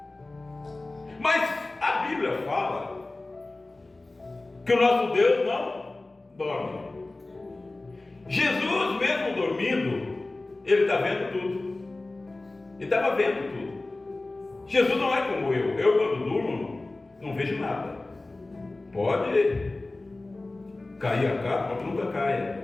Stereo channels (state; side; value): quieter; right; 3.0 dB